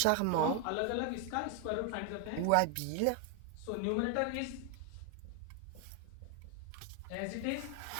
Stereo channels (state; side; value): different; both; correlation 0.01